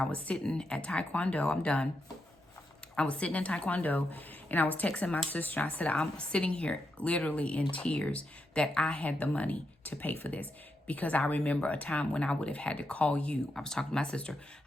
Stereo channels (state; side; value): normal; both; correlation 0.84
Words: was sitting at Taekwondo. I'm done. I was sitting in Taekwondo, and I was texting my sister. I said, I'm sitting here literally in tears that I had the money to pay for this. Because I remember a time when I would have had to call you. I was talking to my sister.